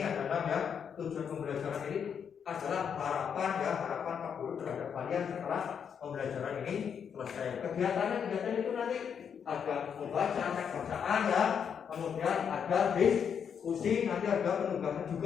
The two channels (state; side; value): quieter; right; 7.4 dB